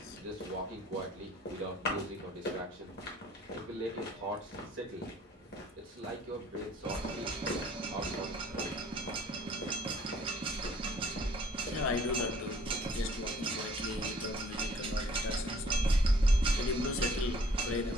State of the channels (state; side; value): normal; both; correlation 0.57